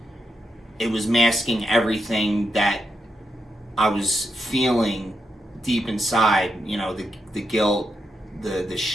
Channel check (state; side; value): normal; both; correlation 0.84